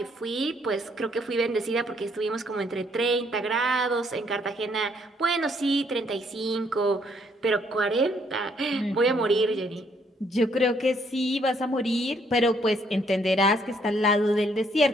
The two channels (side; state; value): both; normal; correlation 0.68